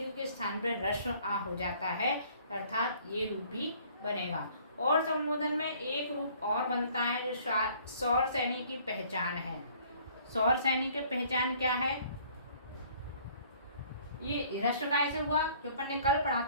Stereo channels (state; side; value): inverted; both; correlation -0.57